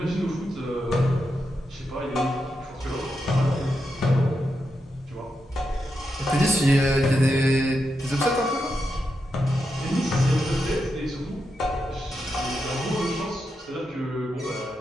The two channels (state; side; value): normal; both; correlation 0.86